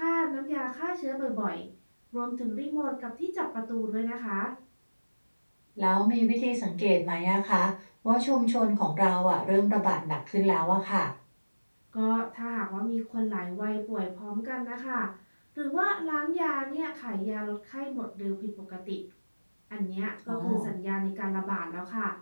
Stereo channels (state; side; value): inverted; both; correlation -1.00